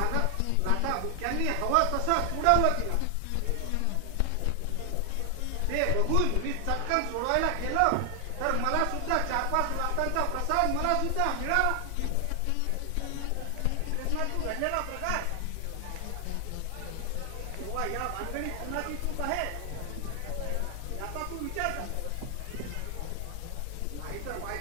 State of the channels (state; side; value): different; both; correlation 0.00